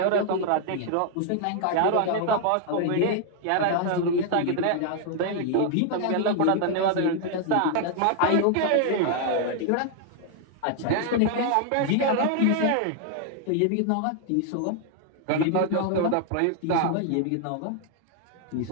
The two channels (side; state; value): both; different; correlation 0.00